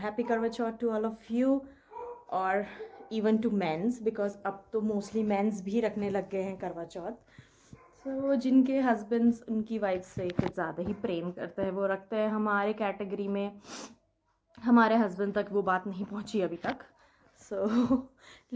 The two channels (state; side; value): identical; both; correlation 1.00